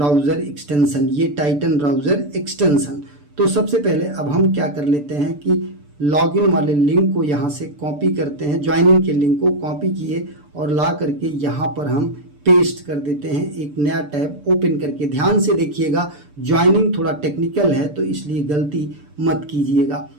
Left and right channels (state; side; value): late; left; 6.8 ms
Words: एक्सटेंशन, ये टाइटन ब्राउज़र एक्सटेंशन। तो सबसे पहले अब हम क्या कर लेते हैं कि लॉगिन वाले लिंक को यहाँ से कॉपी करते हैं, ज्वाइनिंग के लिंक को कॉपी किए और ला करके यहाँ पर हम पेस्ट कर देते हैं, एक नया टैब ओपन करके। ध्यान से देखिएगा, ज्वाइनिंग थोड़ा टेक्निकल है तो इसलिए गलती मत कीजिएगा।